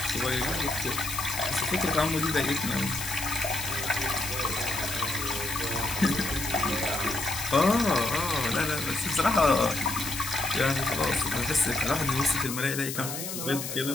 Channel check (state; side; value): noise; left; hiss, 6 dB below the sound